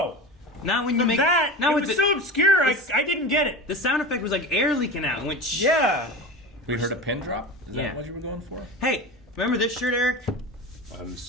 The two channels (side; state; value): both; normal; correlation 0.30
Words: Not when you From make that, Now it with was the, so obscure. this- I didn't get it. the sound effect was like air leaking out. It went shh. Yeah. We heard a pin drop? Is Yeah. that what you were going for? Hey, remember this shirt, Eric? I'm